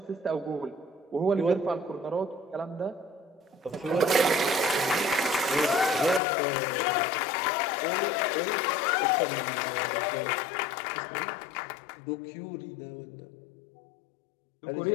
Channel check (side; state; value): right; drops out; at 6.2 s